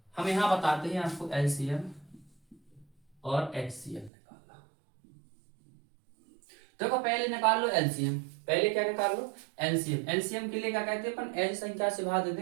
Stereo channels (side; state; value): left; drops out; at 4.1 s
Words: हम यहाँ बताते हैं आपको LCM और HCF निकालना। देखो पहले निकाल लो LCM। पहले क्या निकाल लो? LCM। LCM के लिए क्या कहते हैं अपन? ऐसी संख्या से भाग